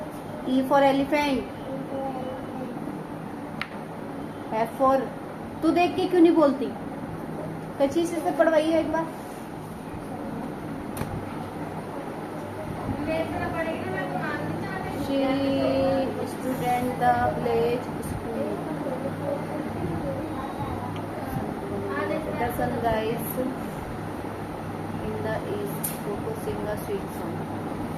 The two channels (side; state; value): both; identical; correlation 1.00